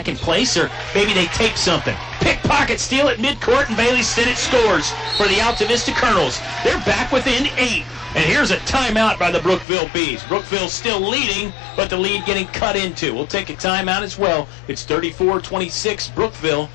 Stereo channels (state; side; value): drops out; right; at 9.7 s